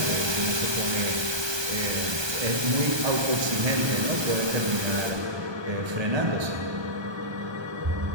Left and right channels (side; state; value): left; late; 1.2 ms